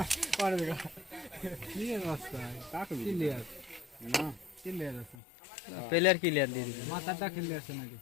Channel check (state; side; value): drops out; right; at 5.2 s